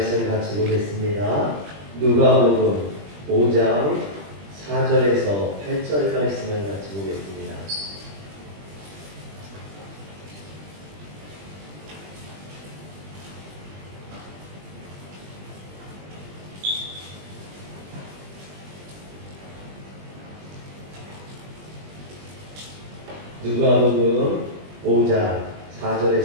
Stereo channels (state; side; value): late; left; 20 ms